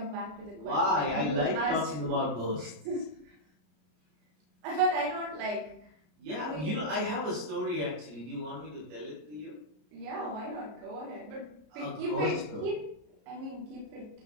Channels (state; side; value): late; left; 33 ms